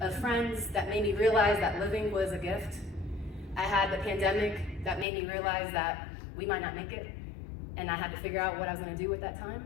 friends that made me realize that living was a gift. I had the pandemic that made me realize that we might not make it, and I had to figure out what I was gonna do at that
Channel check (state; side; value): drops out; right; at 5.1 s